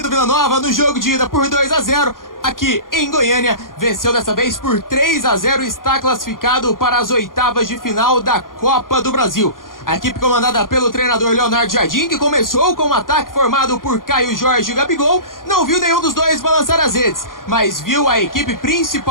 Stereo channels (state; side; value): late; right; 0.90 ms